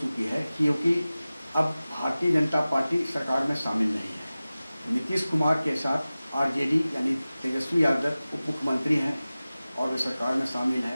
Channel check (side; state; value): both; inverted; correlation -0.97